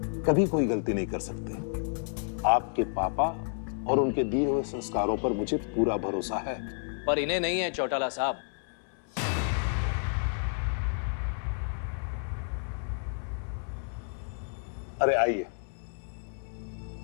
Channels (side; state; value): right; silent; 57 dB below the other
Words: कभी कोई गलती नहीं कर सकते। आपके पापा और उनके दिए हुए संस्कारों पर मुझे पूरा भरोसा है। पर इन्हें नहीं है चौटाला साहब। अरे आइए।